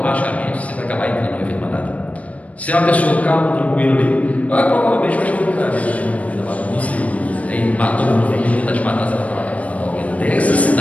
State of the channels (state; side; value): late; right; 0.067 ms